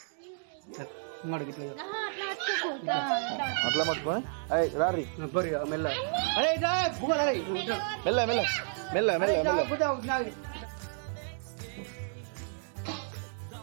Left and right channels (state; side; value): silent; left; digital silence